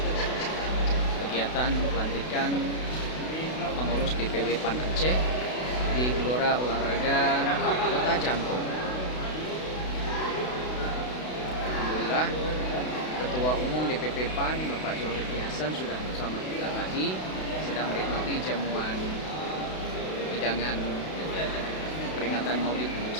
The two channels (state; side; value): late; right; 32 ms